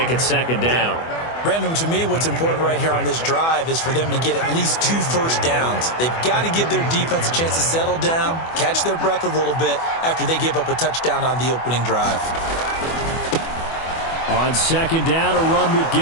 it 2nd down. Brandon, to me, what's important right here on this drive is for them to get at least 2 first downs. They've got to give their defense a chance to settle down, catch their breath a little bit after they give up a touchdown on the opening drive. On second down, a run with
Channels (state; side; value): late; right; 24 ms